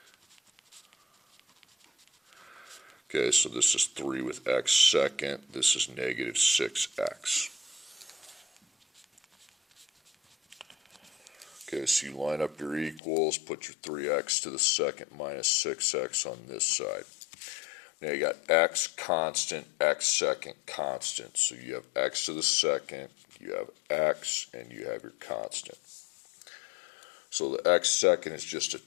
Okay, so this is 3 with x second, this is negative 6x. Okay, so you line up your equals, put your 3x to the second minus 6x on this side. Now you got x constant, x second constant. So you have x to the second, you have x, and you have your constant. So the x second is just a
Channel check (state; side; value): drops out; right; at 13.0 s